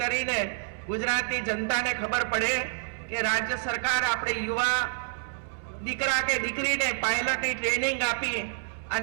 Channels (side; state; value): left; silent; 59 dB below the other